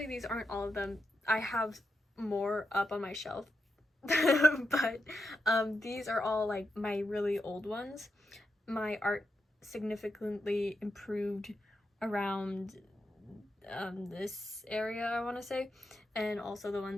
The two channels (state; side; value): normal; both; correlation 0.86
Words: these aren't all of them. I have more up on my shelf, but these are all like my really old ones. My art significantly improved around this area, I want to say, and also the